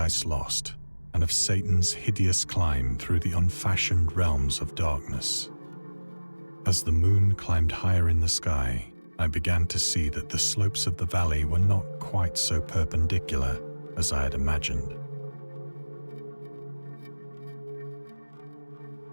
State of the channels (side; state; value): both; inverted; correlation -1.00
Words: Lost and of Satan's hideous climb through the unfashioned realms of darkness. As the moon climbed higher in the sky, I began to see that the slopes of the valley were not quite so perpendicular as I had imagined.